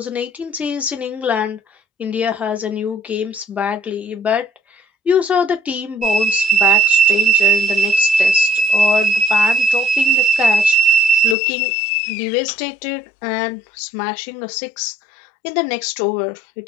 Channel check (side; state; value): right; drops out; at 11.4 s